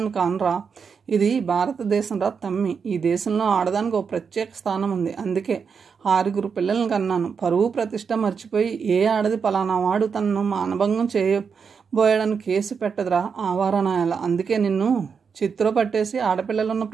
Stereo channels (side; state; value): left; quieter; 6.1 dB